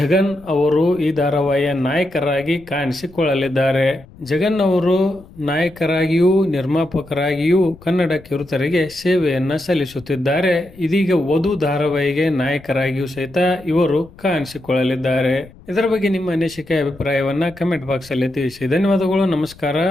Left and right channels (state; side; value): noise; left; rumble, 23 dB below the sound